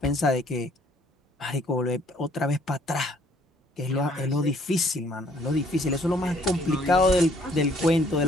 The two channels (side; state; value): both; normal; correlation 0.62